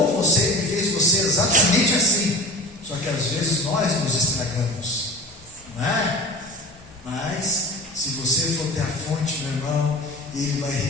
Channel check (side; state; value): both; normal; correlation 0.35